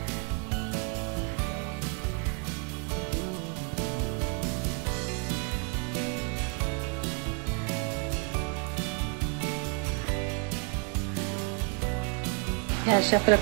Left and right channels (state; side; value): quieter; left; 35.2 dB